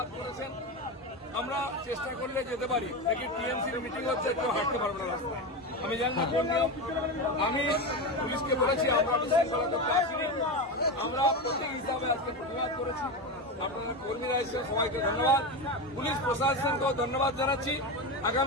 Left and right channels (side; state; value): both; normal; correlation 0.18